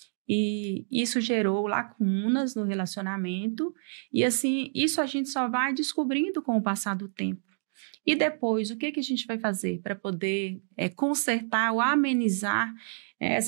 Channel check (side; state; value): left; silent; digital silence